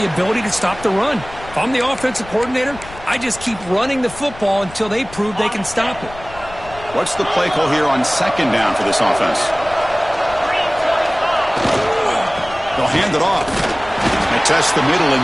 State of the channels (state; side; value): noise; left; rumble, 17 dB below the sound